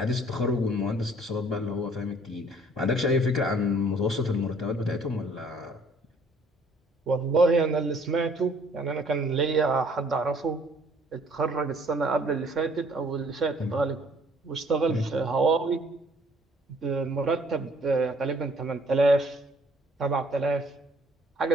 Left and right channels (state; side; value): normal; both; correlation 0.59